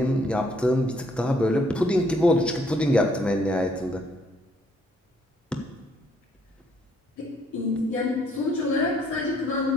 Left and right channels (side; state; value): both; normal; correlation 0.67